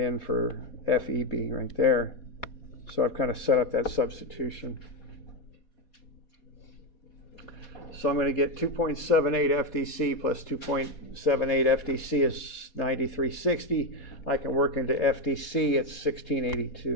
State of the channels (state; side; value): late; right; 4.2 ms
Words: for FEB right there. So I've kind of set up that substitution. So I'm going to get 2.78 FDC plus 2.78 FDC is 9360. I can work into FDC, it's